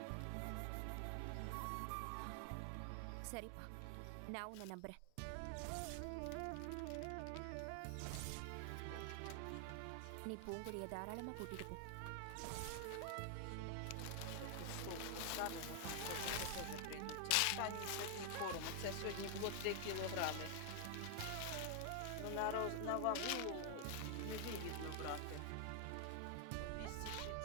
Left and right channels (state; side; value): different; both; correlation 0.00